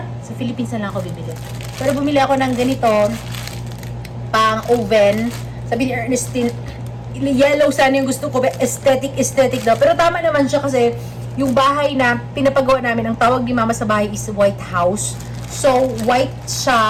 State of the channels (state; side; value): identical; both; correlation 1.00